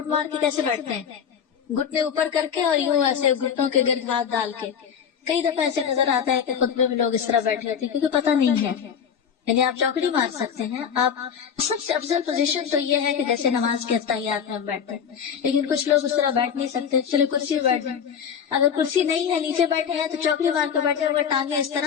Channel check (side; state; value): right; quieter; 7.6 dB